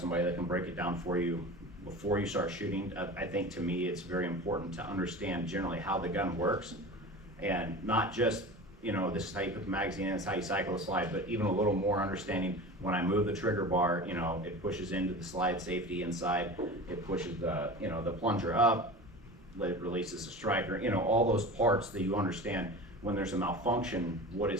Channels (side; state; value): both; normal; correlation 0.34